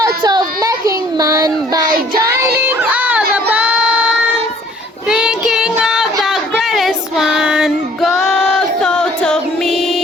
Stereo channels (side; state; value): both; normal; correlation 0.56